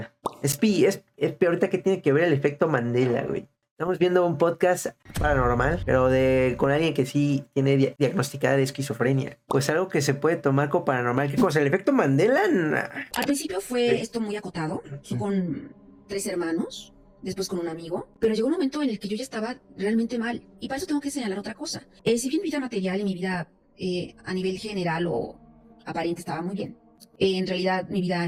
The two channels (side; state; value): both; identical; correlation 1.00